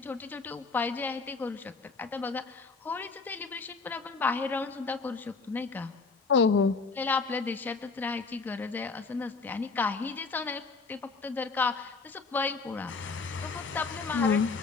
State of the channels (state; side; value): quieter; right; 4.4 dB